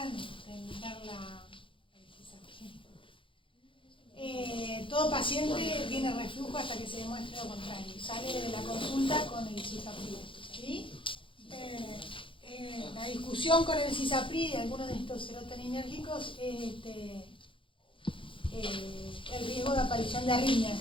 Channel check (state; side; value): late; right; 0.25 ms